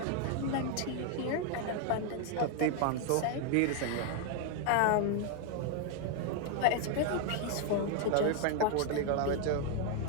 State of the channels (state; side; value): different; both; correlation 0.00